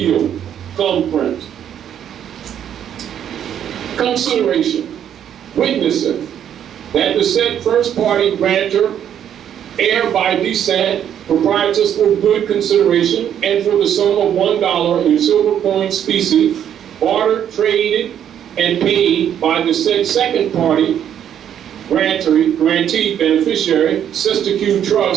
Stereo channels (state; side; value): quieter; left; 9.6 dB